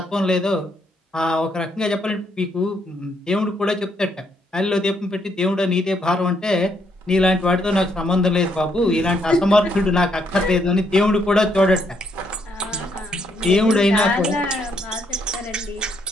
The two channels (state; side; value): normal; both; correlation 0.74